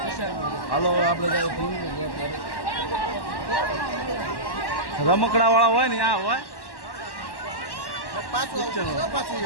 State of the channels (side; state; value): right; late; 1.1 ms